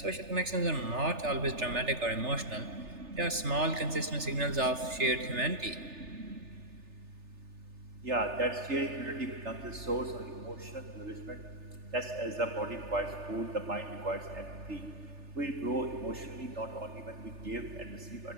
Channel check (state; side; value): late; left; 3.3 ms